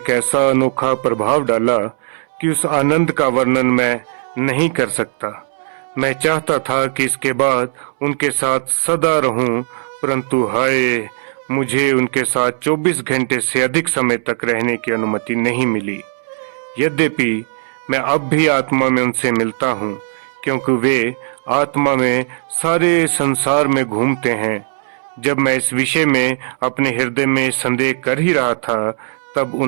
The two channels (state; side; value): silent; left; 67 dB below the other